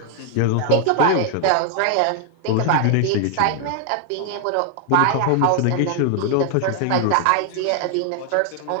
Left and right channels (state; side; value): different; both; correlation 0.00